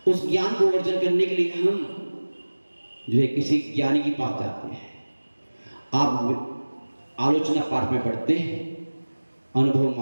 उस ज्ञान को अर्जन करने के लिए हम जो है किसी ज्ञानी के पास जाते हैं। आप आलोचना पाठ में पढ़ते हैं, अनुभव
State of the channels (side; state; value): both; inverted; correlation -1.00